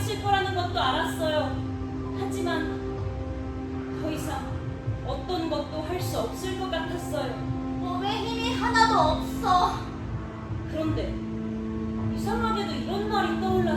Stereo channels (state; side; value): identical; both; correlation 1.00